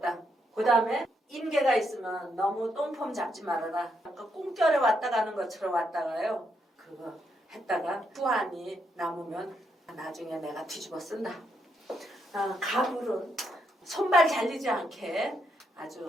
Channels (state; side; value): normal; both; correlation 0.78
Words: 그 다음에 인계가 있으면 너무 똥폼 잡지 말아라. 아까 꿈결에 왔다 가는 것처럼 왔다가요. 그거 했다가 후환이 남으면 나중에 내가 뒤집어 쓴다. 가불은 손발 잘리지 않게